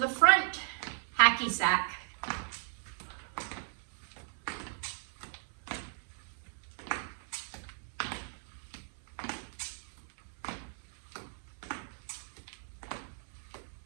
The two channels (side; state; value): left; silent; 53 dB below the other